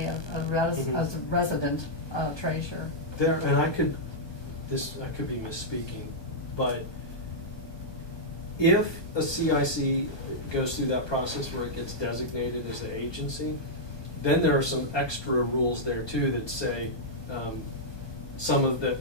as a resident treasurer. There, and I could be misspeaking, but if a CIC goes through that process where it gets designated as an agency, then there are some extra rules there too that say,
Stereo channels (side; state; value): right; late; 1.2 ms